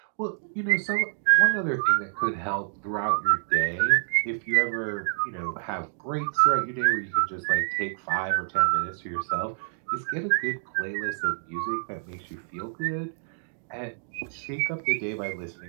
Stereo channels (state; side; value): silent; left; digital silence